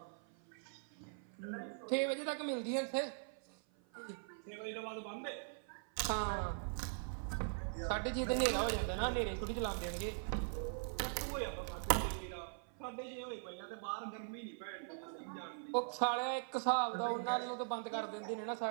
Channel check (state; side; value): silent; left; 50 dB below the other